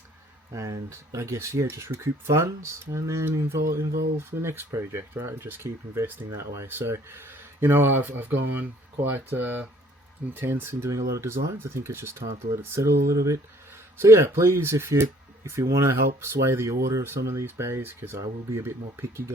and I guess just recoup funds, and then involve the next project, right? And just keep investing that way. So, I've gone quite intense in doing a lot of designs. I think it's just time to let it settle a little bit. So yeah, please, if you want to help sway the order of some of these bays, because I will be a bit more picky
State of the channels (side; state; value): both; normal; correlation 0.58